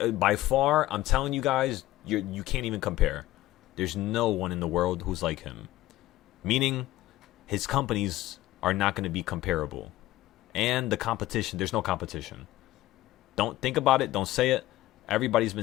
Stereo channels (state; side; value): quieter; right; 16.0 dB